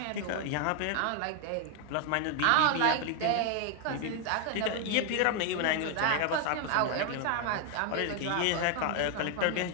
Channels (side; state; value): both; different; correlation 0.01